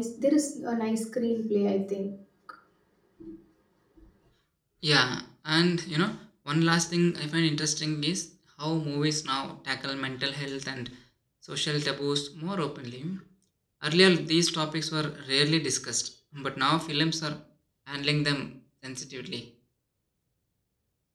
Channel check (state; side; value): identical; both; correlation 1.00